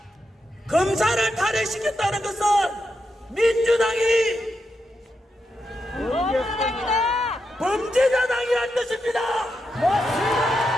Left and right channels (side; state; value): both; normal; correlation 0.86